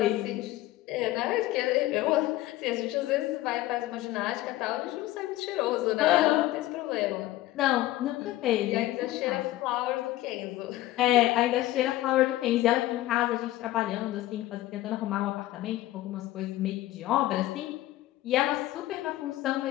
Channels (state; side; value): quieter; right; 15.9 dB